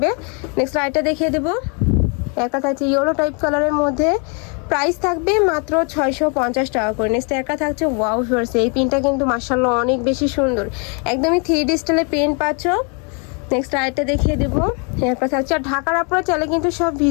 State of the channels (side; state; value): right; quieter; 35.7 dB